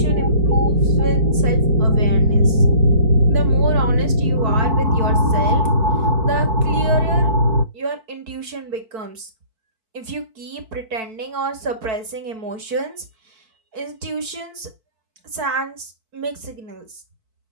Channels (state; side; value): late; left; 4.5 ms